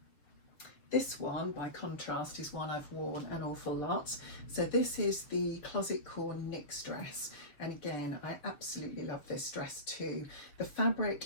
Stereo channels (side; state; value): right; late; 7.0 ms